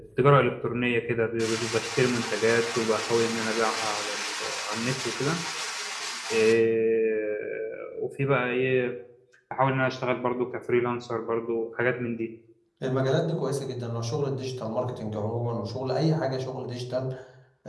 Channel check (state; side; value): identical; both; correlation 1.00